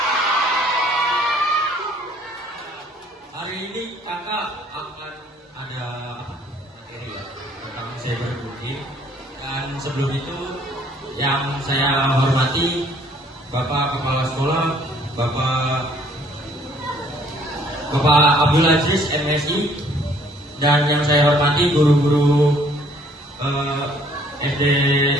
Hari ini kakak akan ada materi ya tentang cyberbullying. Dan sebelum itu yang saya hormati Bapak Kepala Sekolah, Bapak Abdul Aziz MSI, dan yang saya hormati guru-guru SD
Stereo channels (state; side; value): normal; both; correlation 0.60